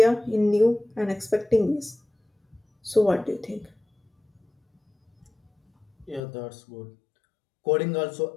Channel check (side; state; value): right; drops out; at 6.2 s